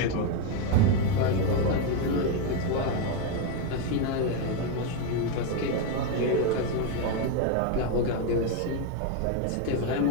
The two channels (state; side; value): different; both; correlation 0.02